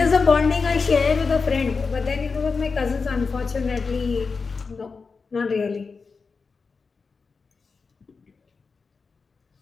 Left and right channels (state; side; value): quieter; right; 4.7 dB